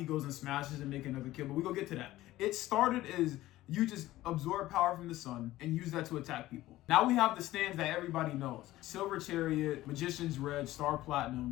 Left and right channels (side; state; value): right; quieter; 16.1 dB